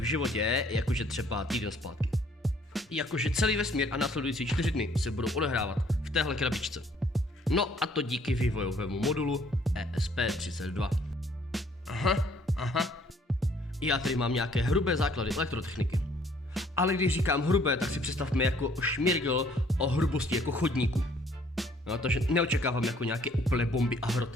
životě, jakože třeba týden zpátky. Jakože celý vesmír a následující 4 dny se budou odehrávat v téhle krabičce. No a to díky vývojovému modulu ESP32. Aha. Já tady mám nějaké hrubé základy elektrotechniky. Ale když říkám hrubé, tak si představme jako šmirgl o hrubosti jako chodníku. No, takže neočekávám jako nějaké úplné bomby a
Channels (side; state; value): both; normal; correlation 0.61